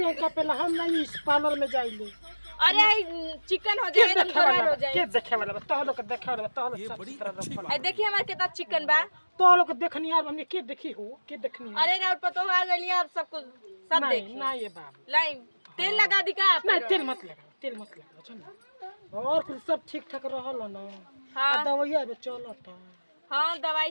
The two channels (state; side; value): inverted; both; correlation -1.00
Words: के पहले हम नहीं इस पार्लर में जाइले। अरे चिकन हो जाए तो खराब हो जाए। के देखे वाला तो लोग देखे वाला तो लोग सब तरह रखल। ए देखिए हमारे कितना चिकन बा। तो लोग देखनी यार हमने के देखी हो के देखनी। अरे राउत पतो आ गइल आप सब कुछ सब देखी। नहीं ये बाबू लाई तेल लगा दी का आप। नहीं तेल मत लगा चल। और फिर सब ठीक ठाक रहल ना। हां दवाइया बे चलता। हां दवाई